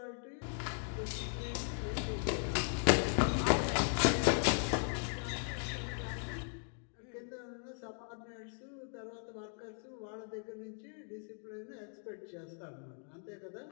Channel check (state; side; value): silent; right; 52 dB below the other